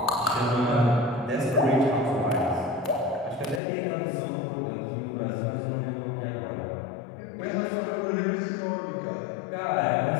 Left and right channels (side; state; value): right; drops out; at 3.6 s